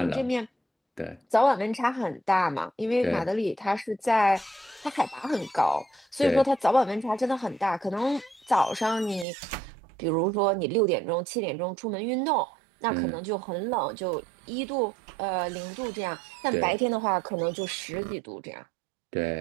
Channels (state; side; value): drops out; left; at 9.2 s